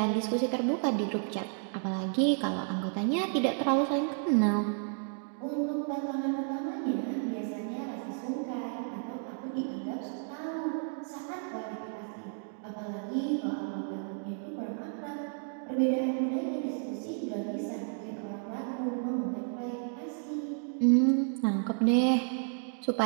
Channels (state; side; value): silent; left; 56 dB below the other